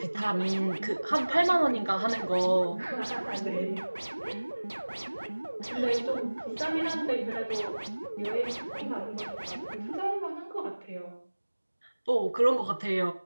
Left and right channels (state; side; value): inverted; both; correlation -1.00